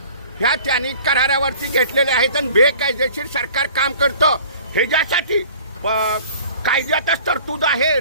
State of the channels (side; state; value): both; inverted; correlation -0.48